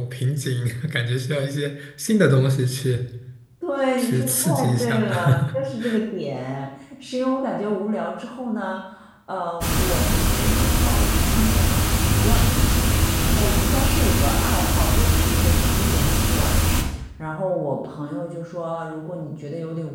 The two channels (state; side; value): identical; both; correlation 1.00